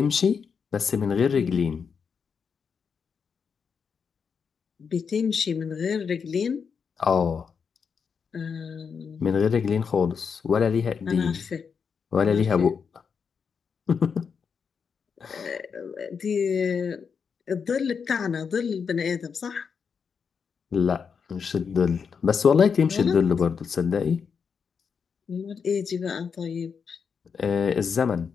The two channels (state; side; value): quieter; right; 6.2 dB